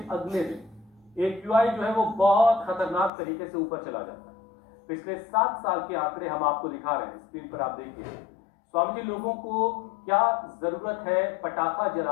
अगले दिन AQI जो है वो बहुत खतरनाक तरीके से ऊपर चला जाता है। पिछले 7 साल के आंकड़े हम आपको दिखा रहे हैं, स्क्रीन पर आप देखिए। स्वामी जी, लोगों को क्या जरूरत है पटाखा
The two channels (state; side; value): drops out; right; at 3.1 s